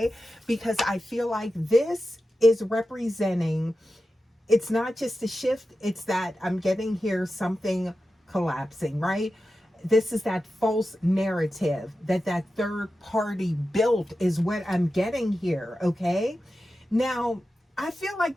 Because I feel like this is representing, it's not just a shift, it's that I'm getting here something collapsing, right? This is that false narrative that third party built is what I'm getting here, okay? Now, I feel like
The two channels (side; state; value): both; normal; correlation 0.92